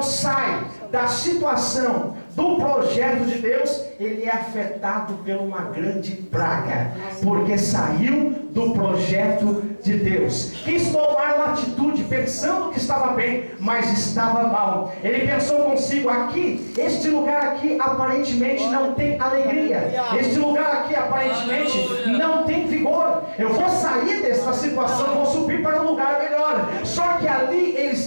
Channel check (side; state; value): both; inverted; correlation -1.00